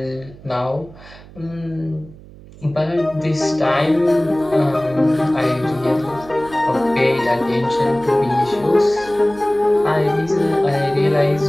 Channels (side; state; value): right; noise; hum, 20 dB below the sound